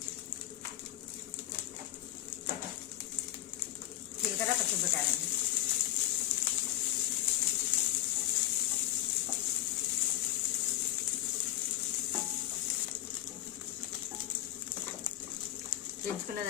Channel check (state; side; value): quieter; right; 14.8 dB